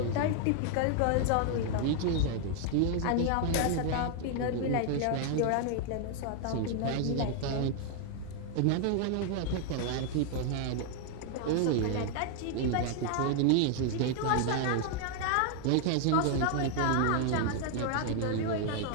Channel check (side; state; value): both; different; correlation 0.00